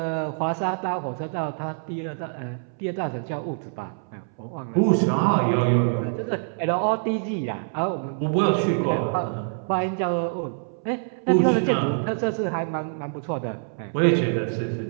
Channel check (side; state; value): left; silent; 60 dB below the other